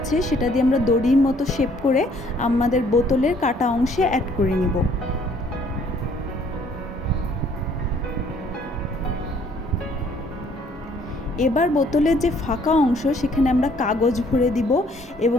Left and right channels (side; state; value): both; normal; correlation 0.62